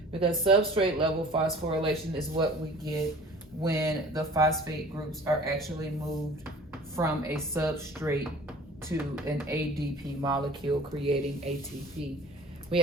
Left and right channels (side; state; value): both; normal; correlation 0.46